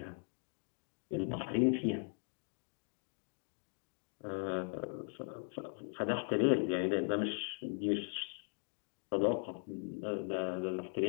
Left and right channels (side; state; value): right; silent; 52 dB below the other